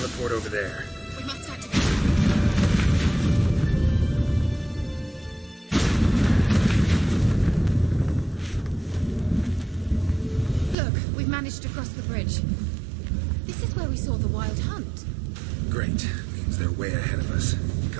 over there. We must activate. Look, we've managed to cross the bridge. This is where we saw the wild hunt. Great. Means they're way ahead of us.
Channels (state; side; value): drops out; left; at 10.8 s